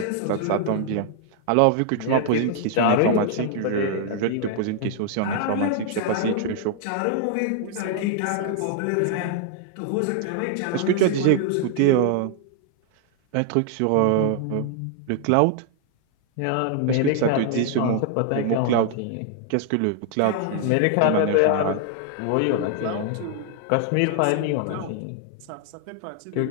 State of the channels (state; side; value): different; both; correlation 0.00